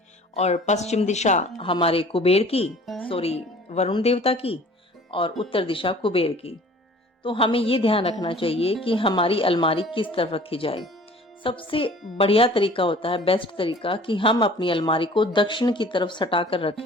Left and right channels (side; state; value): both; normal; correlation 0.48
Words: और पश्चिम दिशा हमारे कुबेर की, वरुण देवता की, और उत्तर दिशा कुबेर की। तो हमें ये ध्यान रखना चाहिए कि हमारी अलमारी किस तरफ रखी जाए। सबसे बढ़िया तरीका होता है, बेस्ट तरीका, कि हम अपनी अलमारी को दक्षिण की तरफ सटा कर